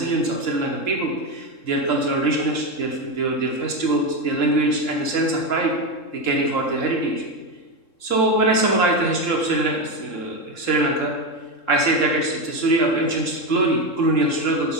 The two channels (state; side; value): late; right; 3.7 ms